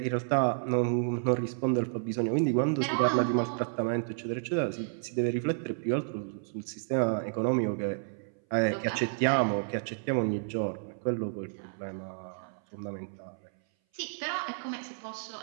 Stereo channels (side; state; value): left; silent; 57 dB below the other